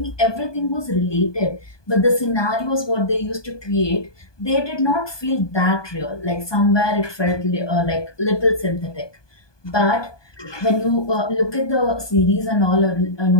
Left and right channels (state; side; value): late; right; 1.2 ms